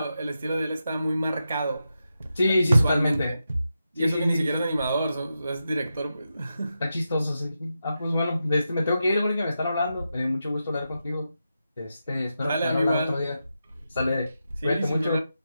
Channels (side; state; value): both; inverted; correlation -0.88